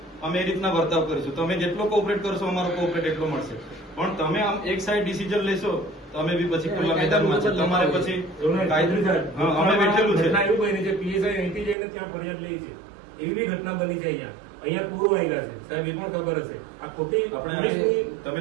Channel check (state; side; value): drops out; left; at 11.8 s